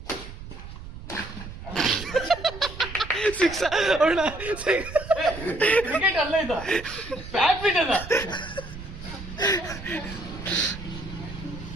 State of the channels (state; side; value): noise; right; rumble, 12 dB below the sound